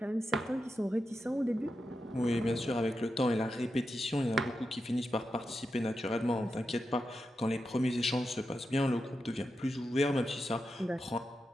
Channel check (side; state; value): both; normal; correlation 0.88